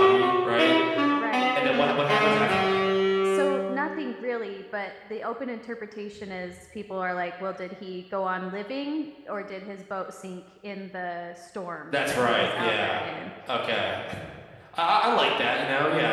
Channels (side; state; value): both; identical; correlation 1.00